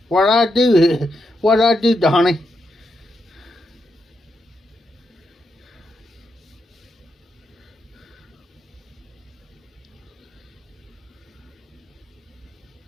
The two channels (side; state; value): both; normal; correlation 0.83